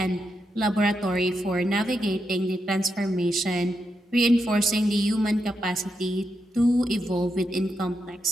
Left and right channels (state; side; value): normal; both; correlation 0.84